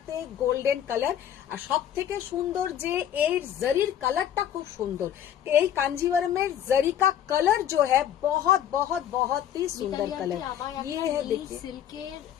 গোল্ডেন কালার, আর সব থেকে সুন্দর যে এই জরির কালারটা খুব সুন্দর। এই कांजीवरम जरी का कलर जो है बहुत बहुत बहुत ही सुंदर कलर। ये है देखिए সিল্কের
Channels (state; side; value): quieter; right; 10.2 dB